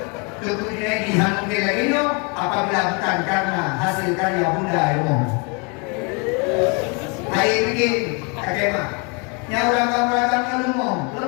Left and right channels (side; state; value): right; quieter; 33.1 dB